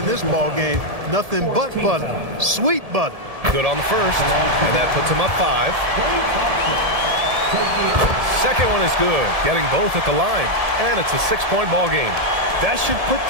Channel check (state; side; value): late; left; 1.7 ms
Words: this ball game. Nothing but butter. Sweet butter. Good on the first, and that puts him up 5. Second one is good, getting both at the line, and it's a 6-point ball game. That should put